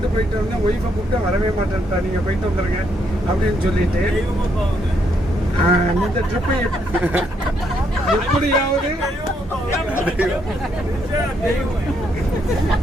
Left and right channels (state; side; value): normal; both; correlation 0.74